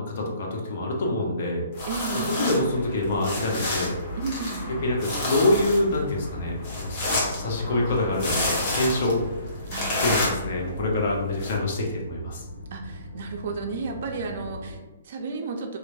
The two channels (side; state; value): both; inverted; correlation -0.57